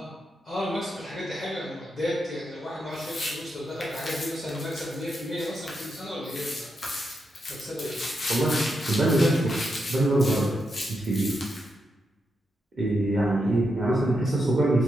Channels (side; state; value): both; normal; correlation 0.84